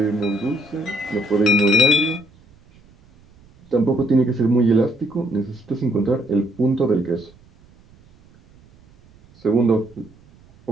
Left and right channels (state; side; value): noise; right; rumble, 28 dB below the sound